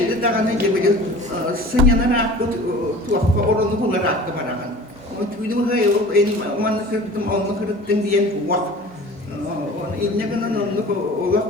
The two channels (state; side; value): normal; both; correlation 0.41